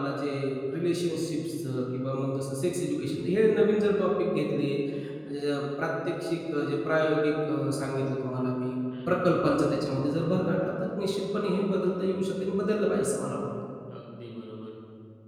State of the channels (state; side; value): identical; both; correlation 1.00